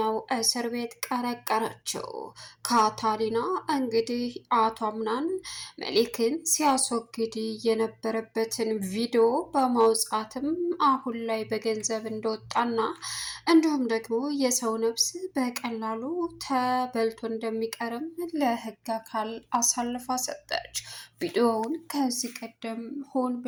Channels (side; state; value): both; identical; correlation 1.00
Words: እስር ቤት ቀረቀረችው። ካታሪና እንግዲህ አቶ አምናን መሊክን ሲያስወግድ የነበረበትን ቪዲዮ በማውጣትም አሁን ላይ በገንዘብ እንደወጣና እንዲሁም ደግሞ የሰው ነፍስ በቀላሉ ተበልቶ እንደሚቀርም ለሕግ አካል አሳልፋ ሰጠች። ቪዲዮውን ከዚህ ቀደም ሆን